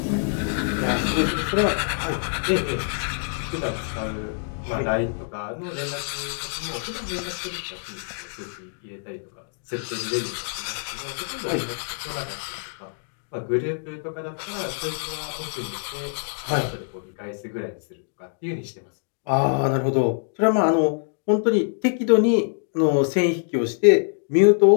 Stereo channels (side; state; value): right; silent; digital silence